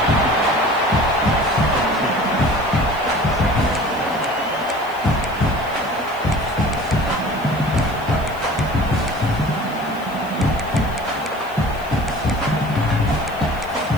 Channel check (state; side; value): noise; left; hiss, 23 dB below the sound